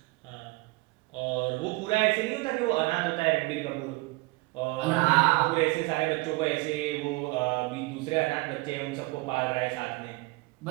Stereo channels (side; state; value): left; quieter; 23.6 dB